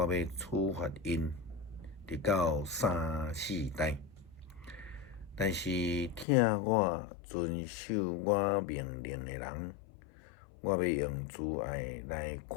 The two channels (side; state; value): right; drops out; at 6.2 s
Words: 要处罚因，直到3、4代。但是听我遵守我命令的人，我要用慈爱来